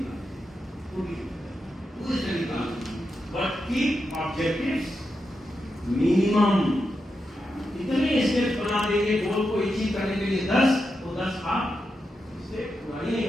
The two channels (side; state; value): both; normal; correlation 0.87